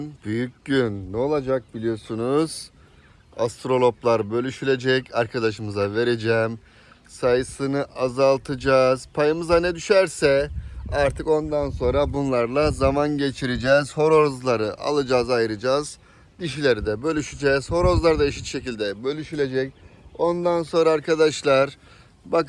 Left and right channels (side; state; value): both; identical; correlation 1.00